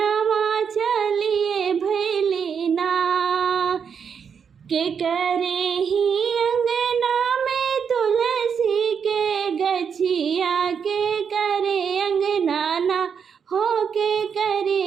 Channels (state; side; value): quieter; left; 6.8 dB